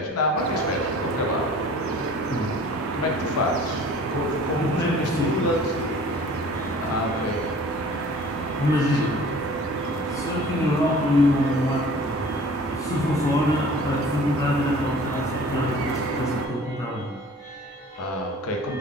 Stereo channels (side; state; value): both; normal; correlation 0.47